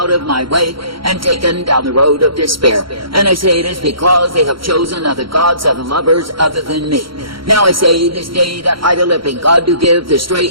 of my way, and taken down the road of despair. And I say it is because they have chosen other gods, other lovers, other than me. Now I say this day that I, the living God, do give the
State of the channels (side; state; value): left; late; 0.74 ms